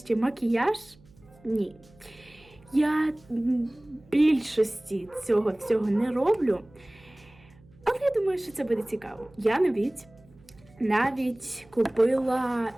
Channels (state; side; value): noise; right; hum, 27 dB below the sound